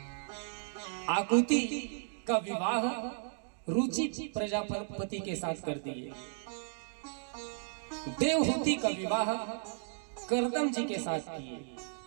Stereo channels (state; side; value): silent; left; digital silence